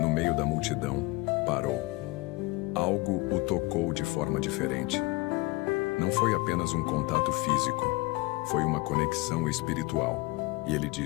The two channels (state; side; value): quieter; right; 23.0 dB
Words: no meio da multidão, parou. Algo o tocou de forma diferente. Não foi apenas um contato físico, foi uma conexão espiritual. E ele